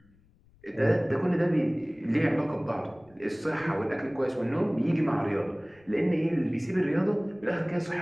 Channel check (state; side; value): noise; left; rumble, 30 dB below the sound